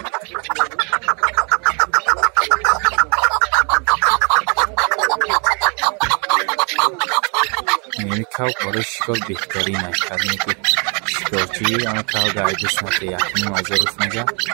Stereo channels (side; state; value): left; quieter; 35.6 dB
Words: یعنی کاو برای شکار بهترین است همین که شکارچی اما کاو گایده سمت یکنی معذور سنجا